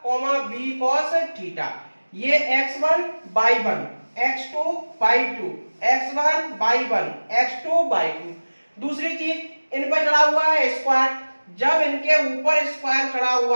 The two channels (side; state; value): both; inverted; correlation -1.00